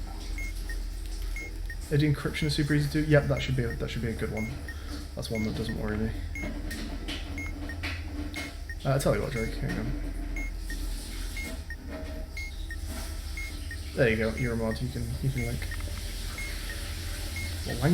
Eddy encryption is super easy to do. Yep, that should be a good one. That's one that doesn't worry me. I'll tell you what, Drake, hang on. There you go, you're a mod, you can link. What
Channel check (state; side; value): identical; both; correlation 1.00